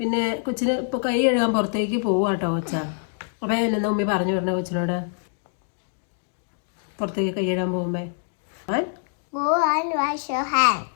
കൊച്ചിന് ഇപ്പോൾ കൈ കഴുകാൻ പുറത്തേക്ക് പോവാട്ടോ കൊച്ച. അപ്പം എന്നാ ഉമ്മി പറഞ്ഞു വിടണേ കൊച്ചിനോട് പുറത്തേക്ക് കൈ കഴുകാൻ പോകുമ്പോ?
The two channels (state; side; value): silent; right; 62 dB below the other